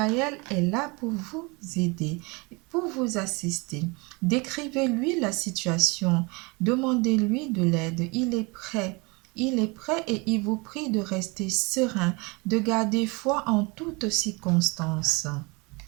est là pour vous aider, pour vous assister. Décrivez-lui la situation, demandez-lui de l'aide, il est prêt. Il est prêt et il vous prie de rester serein, de garder foi en toutes circonstances.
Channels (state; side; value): quieter; left; 27.9 dB